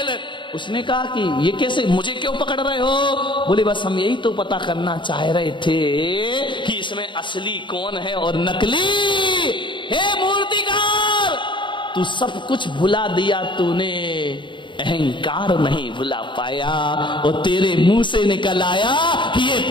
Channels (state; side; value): late; right; 0.23 ms